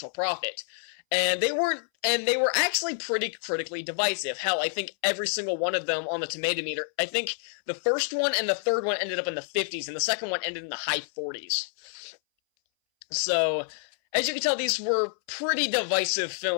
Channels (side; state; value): right; silent; 59 dB below the other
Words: profit. And they were actually pretty critically divisive. Hell, I think every single one of them on the tomato meter, I think the first one and the third one ended up in the 50s, and the second one ended in the high 40s. So, as you can tell, these were pretty divisive